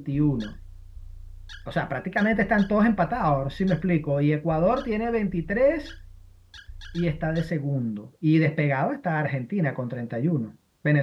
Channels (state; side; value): identical; both; correlation 1.00